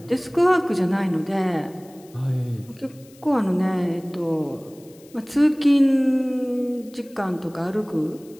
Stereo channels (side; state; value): left; noise; hiss, 26 dB below the sound